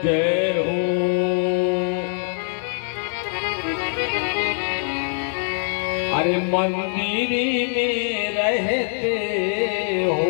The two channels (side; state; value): right; silent; 64 dB below the other